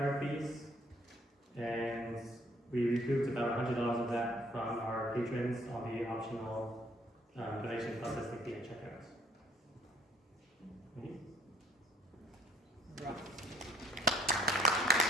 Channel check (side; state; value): both; normal; correlation 0.59